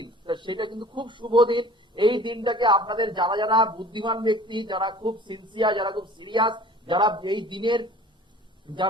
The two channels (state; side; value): normal; both; correlation 0.47